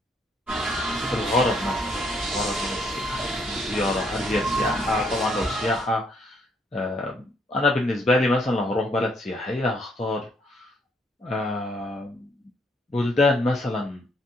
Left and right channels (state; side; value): normal; both; correlation 0.70